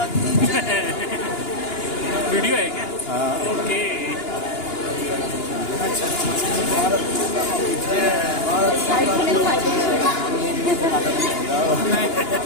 की जय। वीडियो है क्या? हाँ ओके। अच्छा भारत माता की जय,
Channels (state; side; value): late; right; 2.9 ms